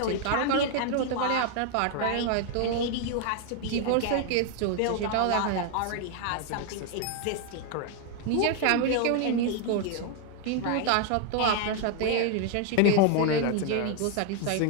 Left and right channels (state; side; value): different; both; correlation 0.00